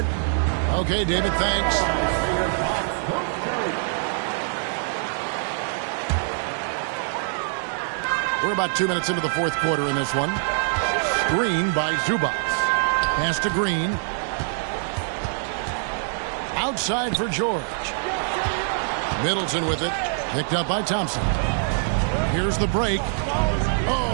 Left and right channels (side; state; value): left; silent; 62 dB below the other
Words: Okay, David, thanks. We're about 2 minutes into the fourth quarter in this one. Screen by Zubac. Pass to Green. Outside for George. Middleton with it. Picked up by Thompson. Here's the break.